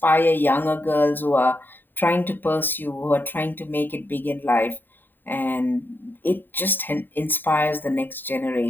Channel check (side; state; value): right; late; 0.092 ms